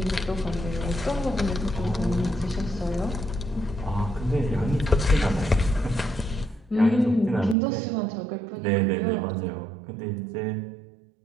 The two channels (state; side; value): drops out; left; at 7.6 s